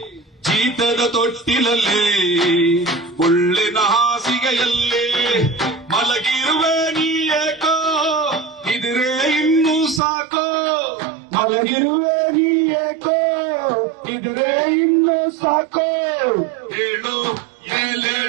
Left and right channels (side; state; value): left; drops out; at 10.0 s